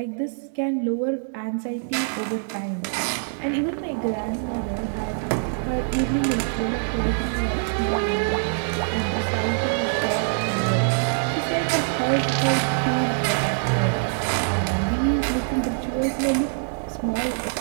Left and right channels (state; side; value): silent; left; digital silence